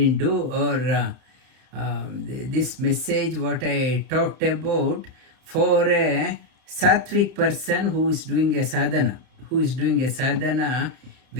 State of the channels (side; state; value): left; late; 31 ms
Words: do," or this message what I talked about for a sattvic person who is doing a sadhana.